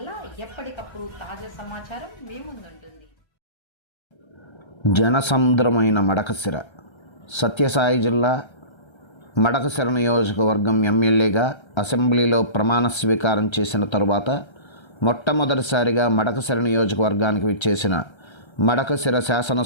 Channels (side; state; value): right; late; 1.3 ms